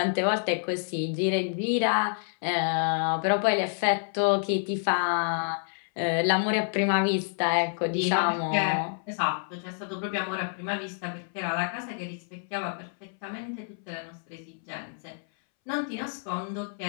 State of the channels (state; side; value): silent; right; 59 dB below the other